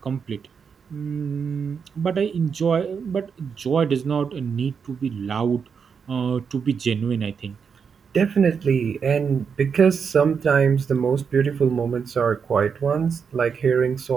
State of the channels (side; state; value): left; quieter; 6.3 dB